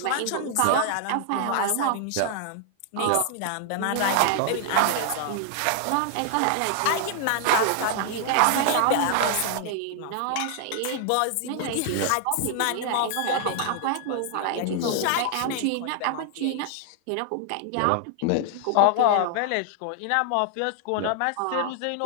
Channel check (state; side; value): different; both; correlation 0.00